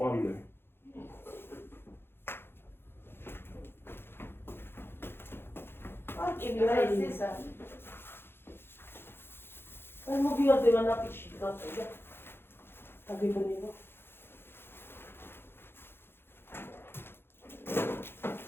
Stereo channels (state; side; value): late; right; 0.11 ms